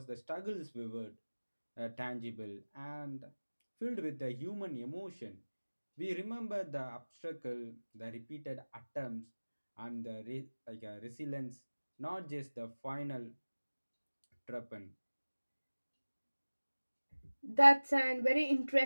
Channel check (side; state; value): both; inverted; correlation -1.00